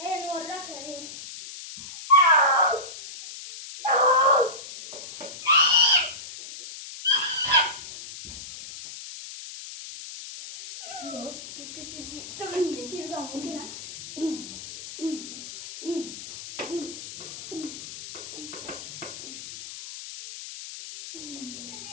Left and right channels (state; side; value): noise; left; hiss, 12 dB below the sound